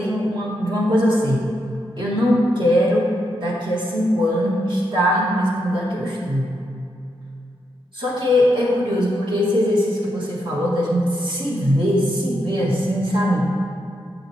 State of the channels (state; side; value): normal; both; correlation 0.81